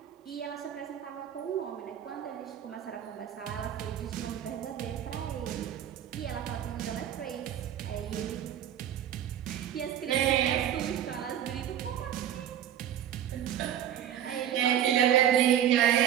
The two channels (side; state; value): left; quieter; 10.3 dB